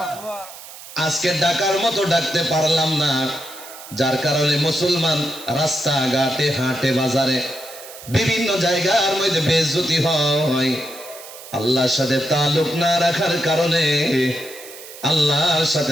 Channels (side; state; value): right; noise; hiss, 16 dB below the sound